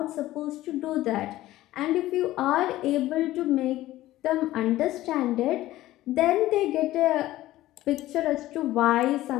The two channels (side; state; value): right; quieter; 15.7 dB